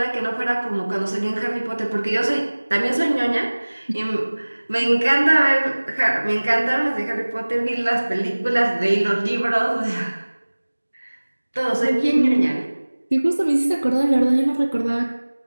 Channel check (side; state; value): both; inverted; correlation -1.00